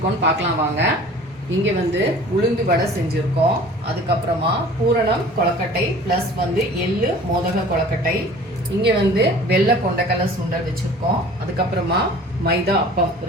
பார்க்கலாம் வாங்க. இங்கே உளுந்து வடை செஞ்சுருக்கோம். அதுக்கப்புறமா பூரணம் கொழக்கட்டை ப்ளஸ் எள்ளு மோதக கொழக்கட்டை. இங்கே வெள்ளை கொண்டக்கடலை சுண்டல் வச்சுருக்கோம். அதுக்கப்புறமா மைதா அப்பம்,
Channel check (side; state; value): both; normal; correlation 0.45